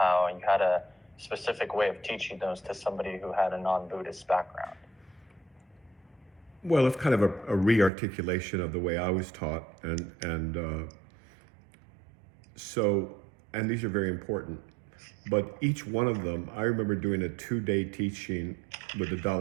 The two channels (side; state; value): left; drops out; at 7.9 s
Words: you had a specific way of teaching those to somebody who had a non-Buddhist background. Well, it's kind of a re-articulation of the way I was taught, and these are very important. But each one of them, I remember doing a 2-day teaching with the